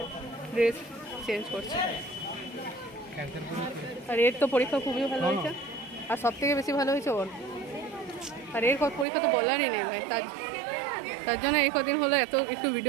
ড্রেস চেঞ্জ করছে। আর এর তো পরীক্ষা খুবই ভালো হয়েছে, আর সব থেকে বেশি ভালো হয়েছে ওর। আর এর পরীক্ষা তো বলারই নেই ভাই, তার জন্য এই কদিন হলো এত একটু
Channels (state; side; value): drops out; left; at 9.1 s